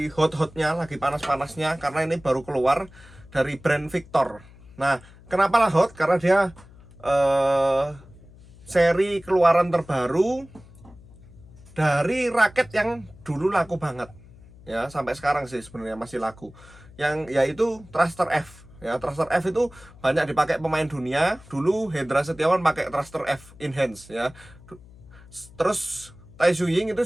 hot-hotnya, lagi panas-panasnya, karena ini baru keluar dari brand Victor. Nah, kenapa lah hot? Karena dia seri keluaran terbaru dari raket yang dulu laku banget, ya sampai sekarang sih sebenarnya masih laku, yang yaitu Thruster F. Ya, Thruster F itu banyak dipakai pemain dunia. Dulu Hendra Setiawan pakai Thruster F Enhance ya. Terus Tai Tzu Ying itu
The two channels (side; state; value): left; noise; hum, 22 dB below the sound